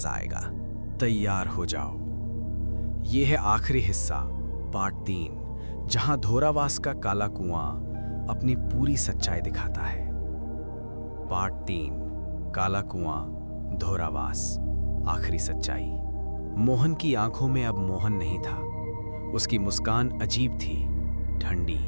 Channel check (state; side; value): inverted; both; correlation -1.00